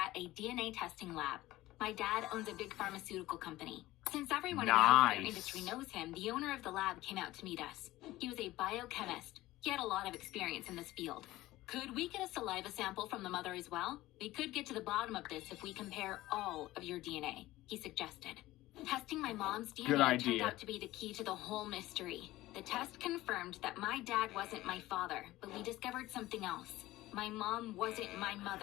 a DNA testing lab. My dad owns a big pharmaceutical company. Since everyone in the healthcare industry knows him, the owner of the lab came out to meet us. He was a biochemist. He had a lot of experience in this field. "Could we get a saliva sample from the mother as well? We could get to the bottom of this if we compare all of your DNA," he suggested. Testing my mom's DNA turned out to be the key to the whole mystery. The test confirmed that my dad wasn't my father, but we discovered something else. My mom wasn't my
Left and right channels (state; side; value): quieter; right; 17.2 dB